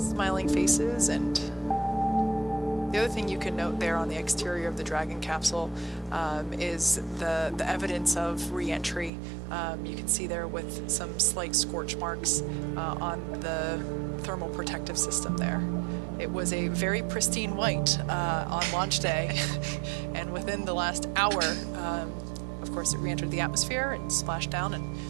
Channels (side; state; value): left; drops out; at 9.1 s